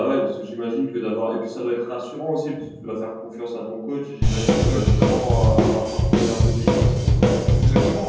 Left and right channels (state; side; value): identical; both; correlation 1.00